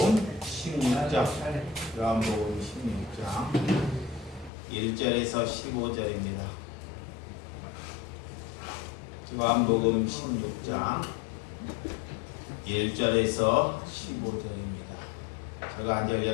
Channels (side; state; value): right; drops out; at 4.5 s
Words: 16장, 요한복음 16장 1절에서 15절입니다. 요한복음 16장 1절에서 15절입니다. 제가 한 절,